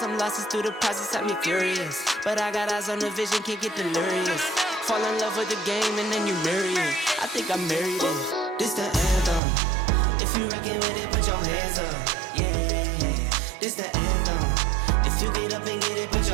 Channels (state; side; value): drops out; left; at 9.4 s